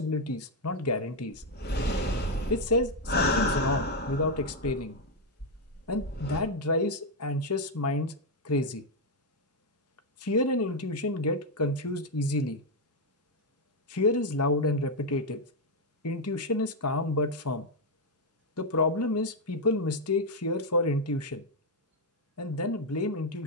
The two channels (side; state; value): both; normal; correlation 0.02